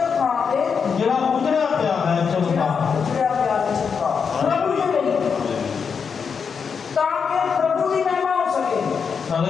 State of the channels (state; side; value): quieter; right; 6.1 dB